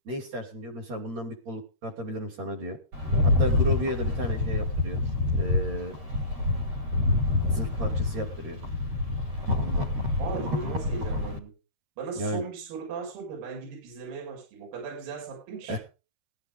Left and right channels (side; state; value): left; late; 13 ms